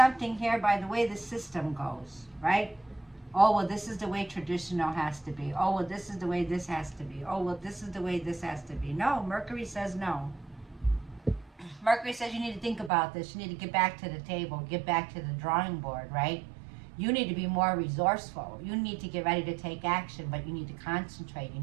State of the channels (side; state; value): left; drops out; at 12.9 s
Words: here by the way the system goes, right? Oh, well, this is the way traditional has to be. Oh, well, this is the way this has to be. Oh, well, this is the way this has to be. No, Mercury says no. Mercury says you need to think about this. You need to get back to the table, get back to the drawing board, right? You need to be more resourceful. You need to get ready to take action, but you need to concentrate. You